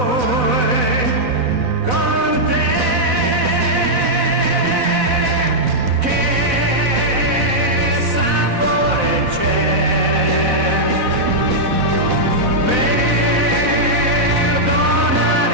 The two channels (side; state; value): left; late; 4.0 ms